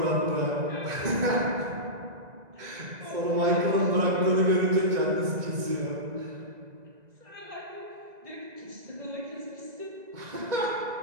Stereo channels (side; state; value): left; late; 1.9 ms